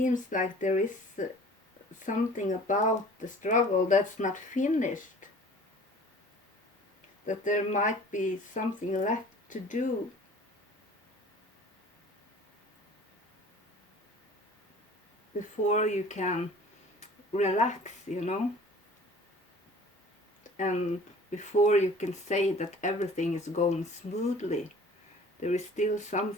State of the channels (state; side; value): normal; both; correlation 0.47